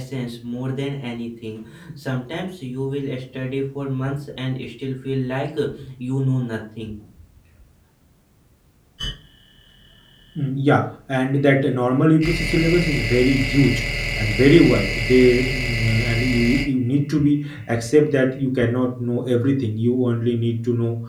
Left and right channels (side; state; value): both; identical; correlation 1.00